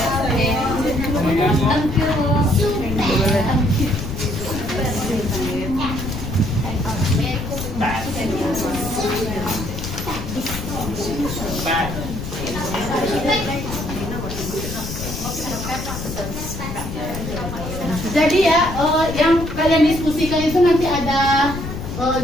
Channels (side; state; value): left; noise; rumble, 7 dB below the sound